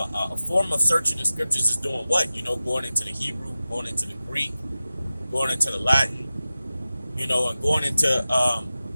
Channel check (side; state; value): both; inverted; correlation -0.95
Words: form of searching the scriptures is doing what? Going into the Hebrew, going into the Greek, going into the Latin, and going into